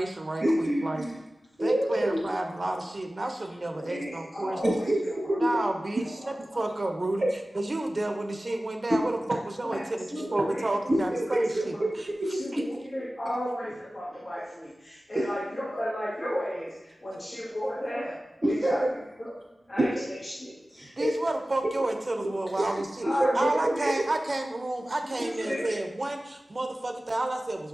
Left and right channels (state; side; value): normal; both; correlation 0.96